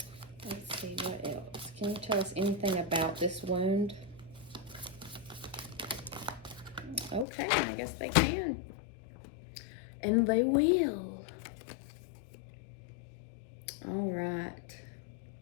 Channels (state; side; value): drops out; right; at 7.2 s